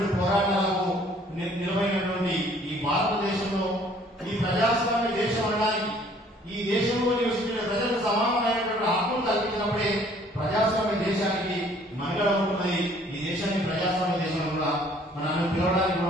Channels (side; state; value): both; normal; correlation 0.58